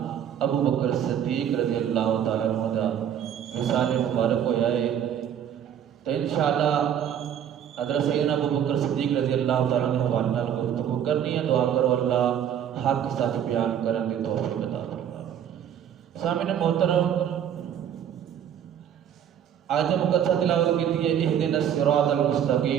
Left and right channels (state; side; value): quieter; left; 9.4 dB